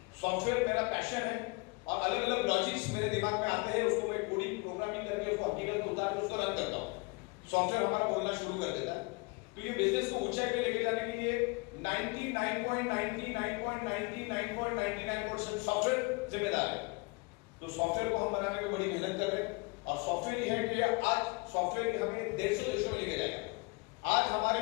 सॉफ्टवेयर मेरा पैशन है और अलग अलग लॉजिक्स मेरे दिमाग में आते हैं, उसको मैं कोडिंग प्रोग्रामिंग करके उसको हकीकत में उतार के उसको रन करता हूं। सॉफ्टवेयर हमारा बोलना शुरू कर देता है। तो ये बिजनेस को ऊंचाई पे लेके जाने के लिए 99.99% सॉफ्टवेयर जिम्मेदार है। तो सॉफ्टवेयर को हम बनाने में बड़ी मेहनत कर रहे हैं और सॉफ्टवेयर ये है कि आज सॉफ्टवेयर हमें 150 देशों में लेके जाएगा। आज हमारे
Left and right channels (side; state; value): right; quieter; 28.0 dB